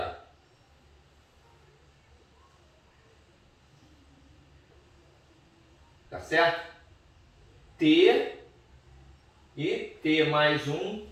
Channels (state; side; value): identical; both; correlation 1.00